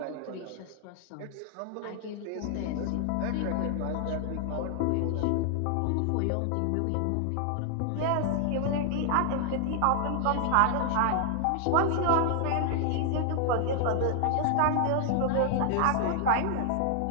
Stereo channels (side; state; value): both; different; correlation 0.00